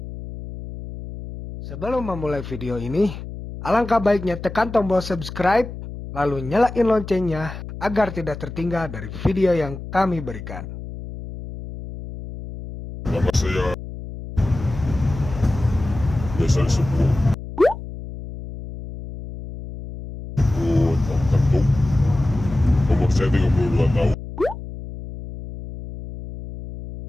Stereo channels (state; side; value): noise; left; hum, 11 dB below the sound